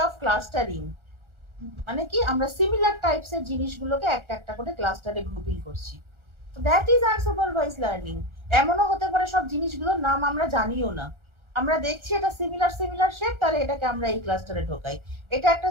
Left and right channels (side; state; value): left; late; 1.4 ms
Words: অফ ক্লাস্টারিং মানে কি, আমরা সিমিলার টাইপস এর জিনিসগুলোকে একটা একটা করে ক্লাস্টারে গ্রুপিং করছি। তো দ্যাট ইজ আনসুপারভাইজ লার্নিং। এমনও হতে পারে সব জিনিসগুলোর নাম আমরা জানিও না, আমরা দেখছি এটা সিমিলার শেপ, তাহলে এটাকে আমরা এই ক্লাস্টারে ঢোকাই, এটা একটা